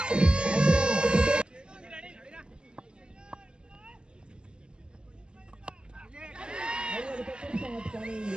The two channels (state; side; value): late; left; 0.049 ms